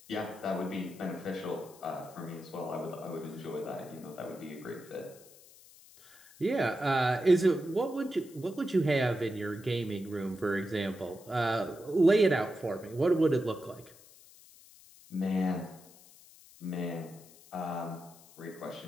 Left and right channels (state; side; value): noise; left; hiss, 23 dB below the sound